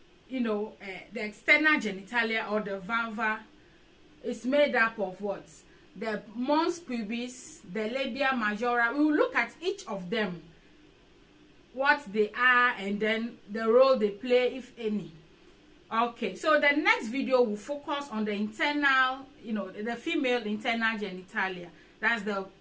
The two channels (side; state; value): both; identical; correlation 1.00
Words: the external genitalia or the vulva is made up of what? The mons pubis, the labia majora. We will look at each of them, what they are, and then the role they play, if any. Okay, so the next video will focus on the internal, the female internal genitalia. That's the